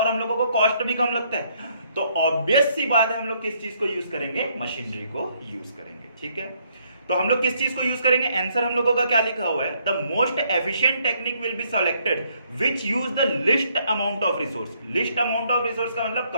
हम लोगों को कॉस्ट भी कम लगता है। तो ऑब्वियस सी बात है हम लोग किस चीज को यूज करेंगे, मशीनरी को यूज करेंगे। ठीक है, तो हम लोग किस चीज को यूज करेंगे, आंसर हम लोगों का क्या लिखा हुआ है, the most efficient technique will be selected which use the list amount of resource. List amount of resource का मतलब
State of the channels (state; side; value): inverted; both; correlation -0.69